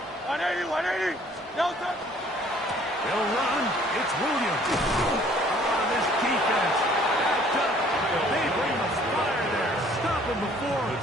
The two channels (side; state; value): both; normal; correlation 0.57